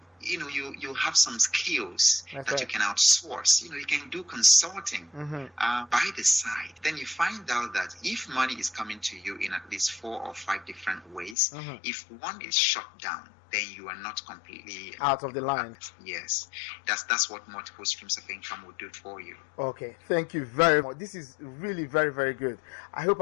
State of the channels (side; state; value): right; drops out; at 11.4 s